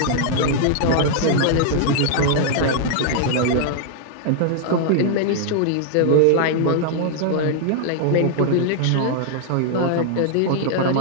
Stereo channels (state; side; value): different; both; correlation -0.01